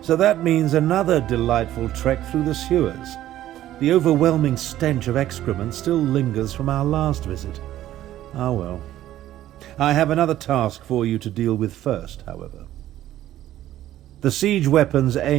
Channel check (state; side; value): quieter; left; 13.3 dB